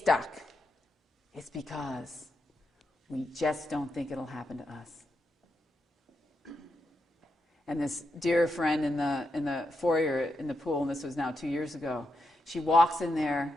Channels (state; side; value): normal; both; correlation 0.84